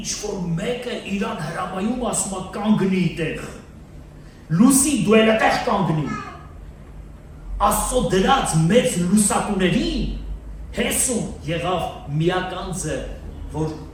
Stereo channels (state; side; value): identical; both; correlation 1.00